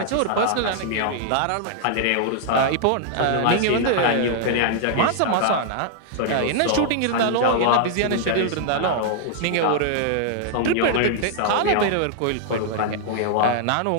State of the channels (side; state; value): both; different; correlation -0.01